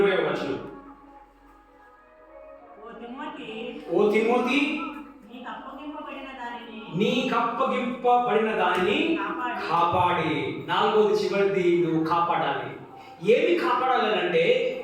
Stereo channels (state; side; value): identical; both; correlation 1.00